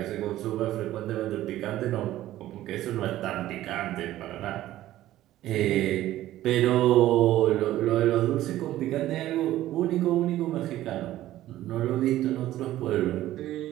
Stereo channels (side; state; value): left; quieter; 14.3 dB